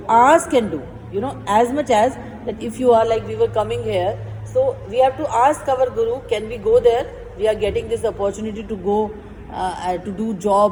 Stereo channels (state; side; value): identical; both; correlation 1.00